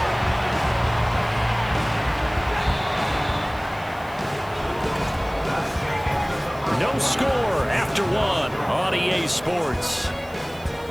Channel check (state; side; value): noise; right; hiss, 24 dB below the sound